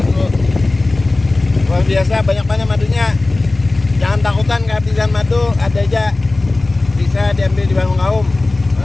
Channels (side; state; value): right; quieter; 3.0 dB